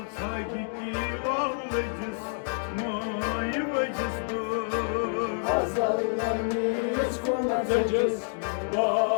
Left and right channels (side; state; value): right; silent; digital silence